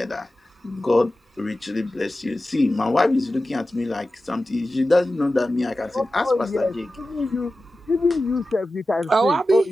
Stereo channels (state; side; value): normal; both; correlation 0.94